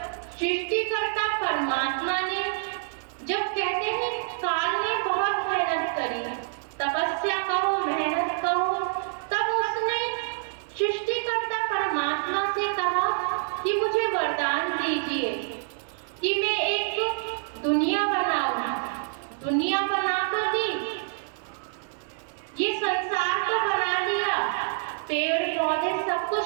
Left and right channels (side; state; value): left; silent; digital silence